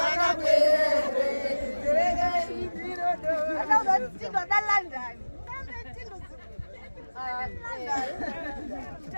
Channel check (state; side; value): inverted; both; correlation -1.00